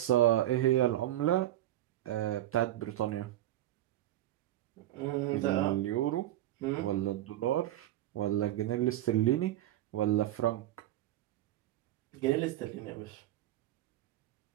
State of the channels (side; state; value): left; quieter; 13.8 dB